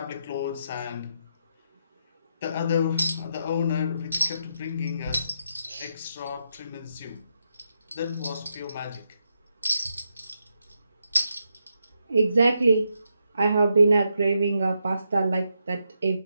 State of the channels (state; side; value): inverted; both; correlation -0.82